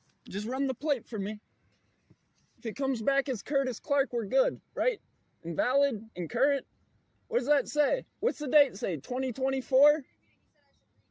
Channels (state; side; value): identical; both; correlation 1.00